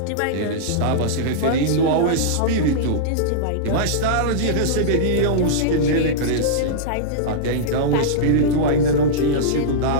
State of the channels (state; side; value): different; both; correlation -0.03